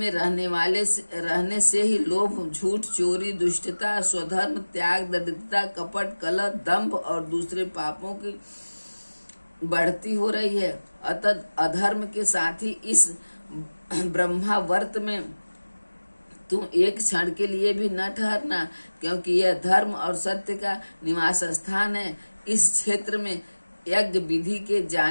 रहने से ही लोभ, झूठ, चोरी, दुष्टता, स्वधर्म त्याग, दरिद्रता, कपट, कलह, दंभ और दूसरे पापों की बढ़ती हो रही है। अतः अधर्म के साथ ही इस ब्रह्मावर्त में तुम एक क्षण के लिए भी न ठहरना, क्योंकि यह धर्म और सत्य का निवास स्थान है। इस क्षेत्र में यज्ञ विधि के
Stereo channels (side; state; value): both; inverted; correlation -1.00